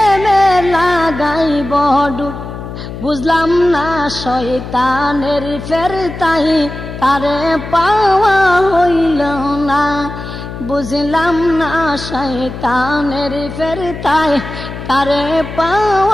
লাগাইব ডুর। বুঝলাম না শয়তানের ফেরতাই, তারে পাওয়া হইল না। বুঝলাম না শয়তানের ফেরতাই, তারে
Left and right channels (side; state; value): left; noise; hum, 10 dB below the sound